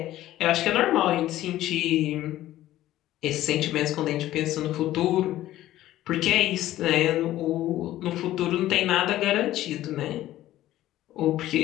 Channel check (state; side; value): quieter; right; 14.3 dB